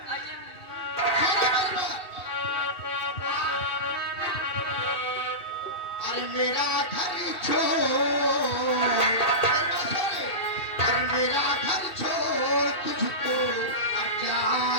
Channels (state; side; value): late; right; 2.7 ms